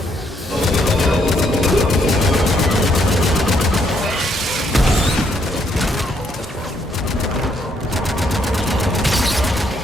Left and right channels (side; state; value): both; normal; correlation 0.72